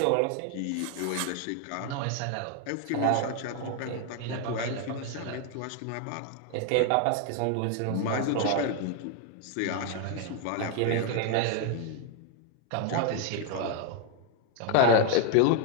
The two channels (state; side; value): different; both; correlation 0.00